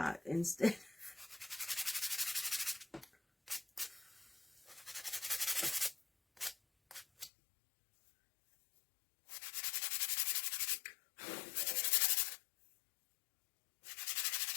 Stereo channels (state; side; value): drops out; right; at 7.3 s